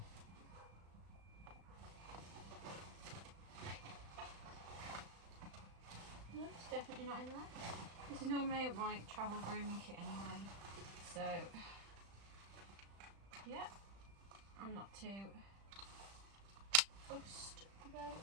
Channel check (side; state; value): left; late; 35 ms